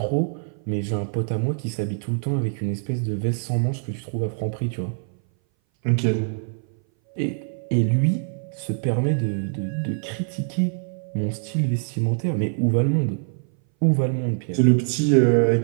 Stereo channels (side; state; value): left; silent; 59 dB below the other